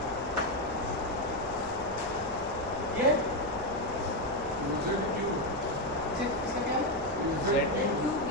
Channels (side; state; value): right; noise; rumble, 14 dB below the sound